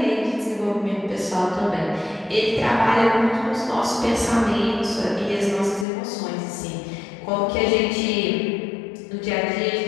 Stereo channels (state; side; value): drops out; right; at 5.9 s